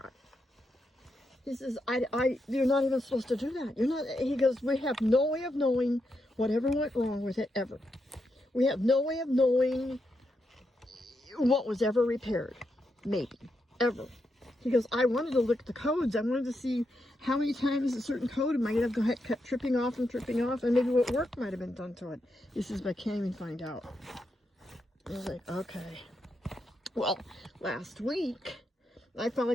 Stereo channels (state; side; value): normal; both; correlation 0.83